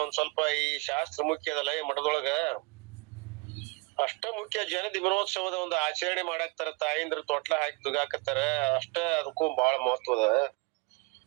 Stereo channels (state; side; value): quieter; left; 26.5 dB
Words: ಒಂದ್ ಸ್ವಲ್ಪ ಈ ಶಾಸ್ತ್ರ ಮುಖ್ಯ ಅದಲ್ಲ ಈ ಮಠದೊಳಗ, ಅಷ್ಟ ಮುಖ್ಯ. ಜನ ದಿನೋತ್ಸವದ ಒಂದು ಆಚರಣೆ ಮಾಡಾಕ್ತಾರ, ತಾಯಿಂದ್ರ ತೊಟ್ಲ ಹಾಕಿ ತುಗಾಕತ್ತಾರ, ಅಷ್ಟ ಅದಕ್ಕೂ ಬಹಳ ಮಹತ್ವದ.